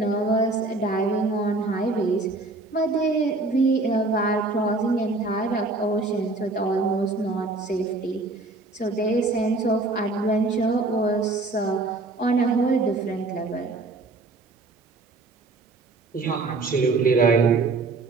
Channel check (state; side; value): quieter; left; 3.3 dB